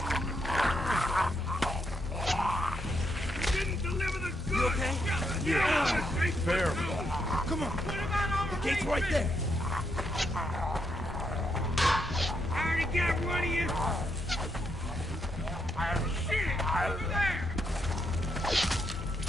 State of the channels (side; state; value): both; normal; correlation 0.79